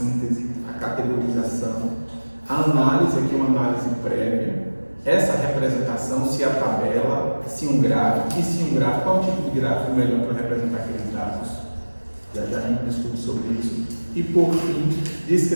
a categorização, a análise, aqui uma análise prévia, essa representação, se a tabela, se um gráfico, e se um gráfico, qual tipo de gráfico melhor para representar aqueles dados? Já a gente discute sobre isso. E por fim,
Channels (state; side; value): inverted; both; correlation -1.00